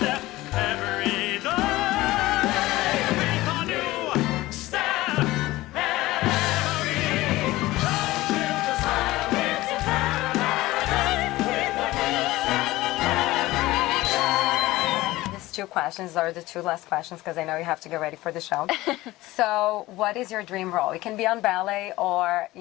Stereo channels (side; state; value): right; quieter; 18.2 dB